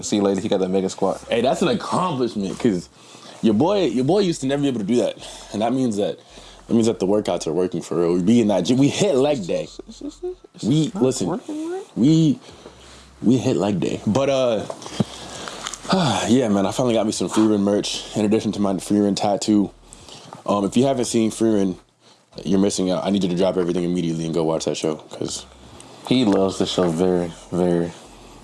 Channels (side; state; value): both; identical; correlation 1.00